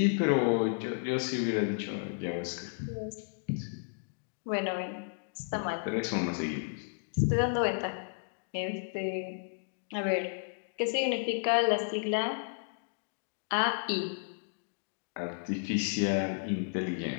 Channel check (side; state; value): right; silent; digital silence